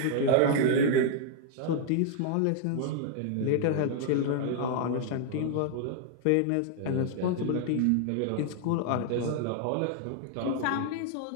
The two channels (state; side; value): different; both; correlation 0.00